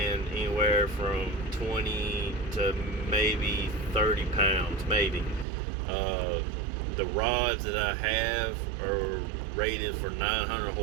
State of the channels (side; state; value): left; drops out; at 5.5 s